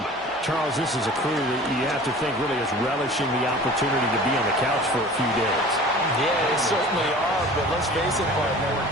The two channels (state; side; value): normal; both; correlation 0.42